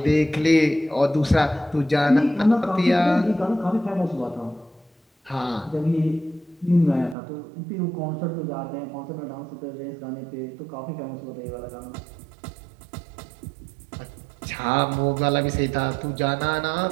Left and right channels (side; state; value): left; drops out; at 7.2 s